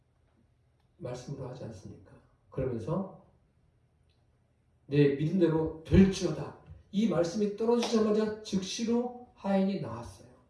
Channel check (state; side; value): identical; both; correlation 1.00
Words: 말씀으로 하지 않습니까? 그러면서 내 믿음대로 될지어다. 이 말씀이 떨어지자마자 즉시로 하인이 나았어요.